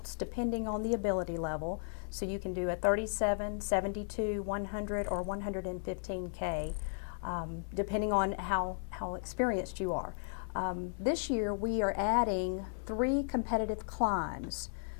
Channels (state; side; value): silent; right; digital silence